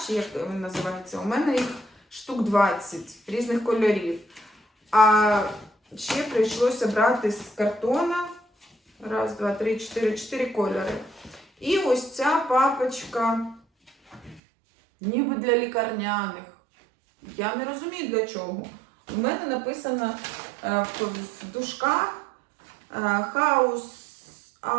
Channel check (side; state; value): left; drops out; at 14.4 s